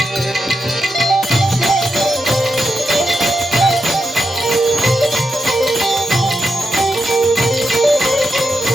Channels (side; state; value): both; normal; correlation 0.86